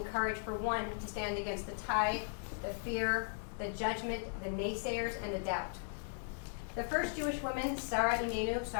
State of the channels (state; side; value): silent; right; digital silence